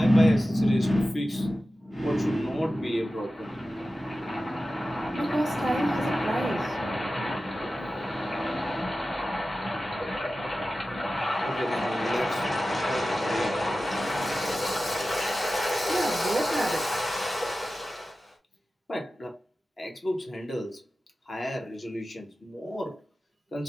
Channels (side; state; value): both; normal; correlation 0.94